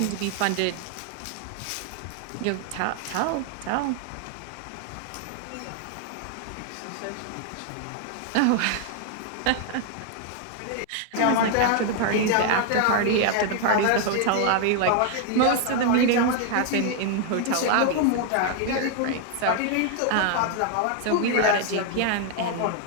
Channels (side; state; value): both; different; correlation 0.00